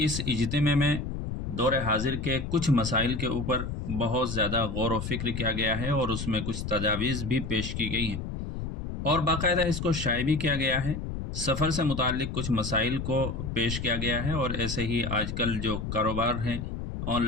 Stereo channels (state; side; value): noise; left; rumble, 5 dB below the sound